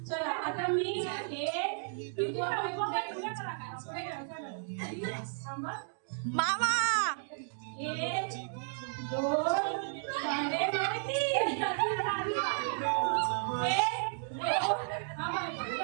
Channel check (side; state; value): left; silent; digital silence